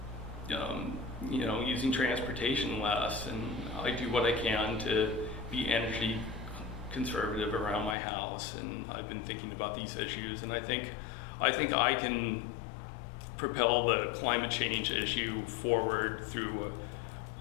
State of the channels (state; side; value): drops out; right; at 8.0 s